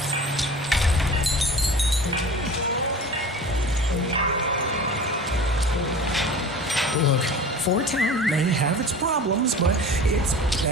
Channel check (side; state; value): both; normal; correlation 0.39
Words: Look, Fort Town may have its problems, but it's